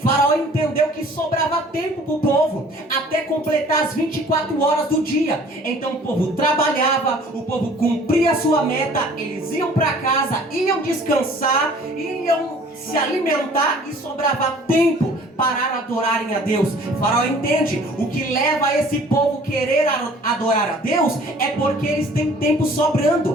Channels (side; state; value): both; normal; correlation 0.52